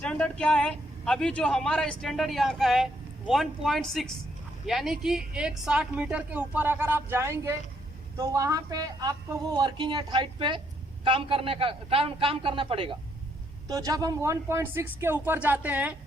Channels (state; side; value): normal; both; correlation 0.73